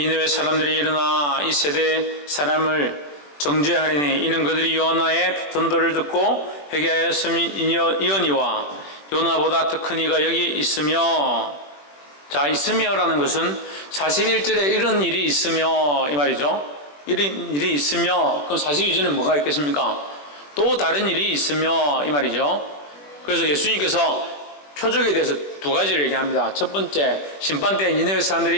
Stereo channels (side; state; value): right; late; 21 ms